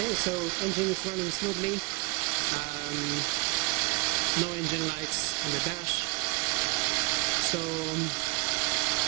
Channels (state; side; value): quieter; left; 29.4 dB